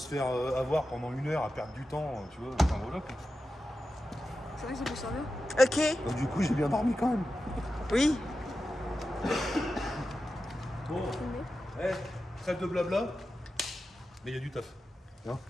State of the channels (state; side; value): normal; both; correlation 0.91